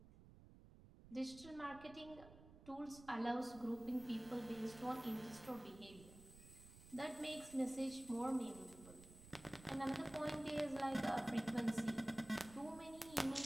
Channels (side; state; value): right; noise; rumble, 18 dB below the sound